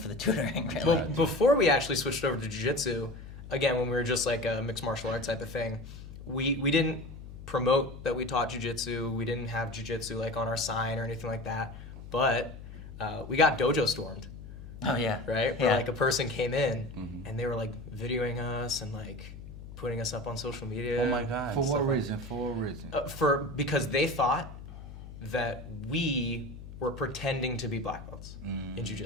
the tutoring. Really. Well, before we actually switched over to jiu-jitsu, again, when we were just like a mixed martial arts type of thing, we didn't promote that we taught jiu-jitsu. We didn't have jiu-jitsu like on our sign or anything like that. But we got dojo stormed, Oh yeah. right? Where Yeah. like a person came in and they were like videoing us and like putting us up on social media. Oh my God. For stuff what like- reason? For what reason? Because they thought that we were pretending to be black belts in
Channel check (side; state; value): left; noise; hum, 13 dB below the sound